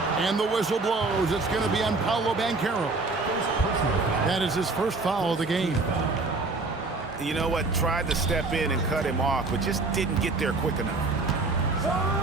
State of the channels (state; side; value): quieter; left; 3.6 dB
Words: And the whistle blows. It's going to be on Paolo Banchero. That is his first foul of the game. You know what? Tried to step in and cut him off, but just didn't get there quick enough.